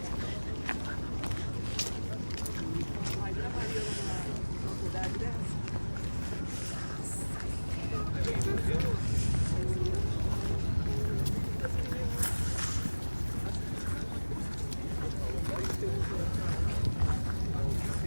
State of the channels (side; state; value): both; inverted; correlation -1.00